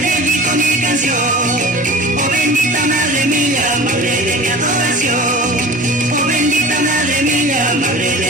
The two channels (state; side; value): normal; both; correlation 0.39